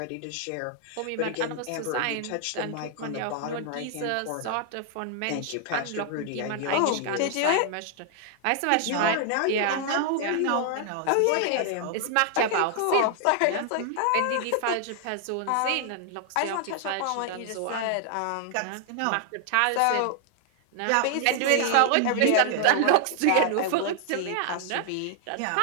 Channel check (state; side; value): different; both; correlation 0.00